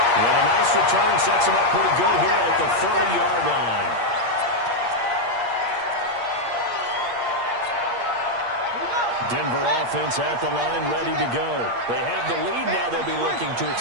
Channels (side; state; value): left; late; 8.5 ms